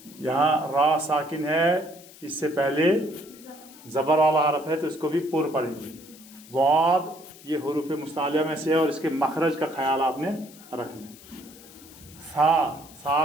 यहाँ रा साकिन है, इससे पहले ज़बर वाला हरफ है तो इसको भी पूर्ण पढ़ेंगे। वाद ये हुरूफ़ मुस्तालिया में से है और इसके मखरज का ख्याल आपने रखना है। सा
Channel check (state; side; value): noise; left; hiss, 21 dB below the sound